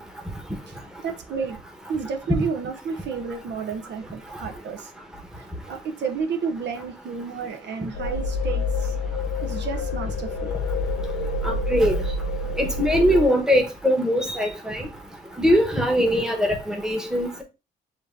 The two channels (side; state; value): both; normal; correlation 0.65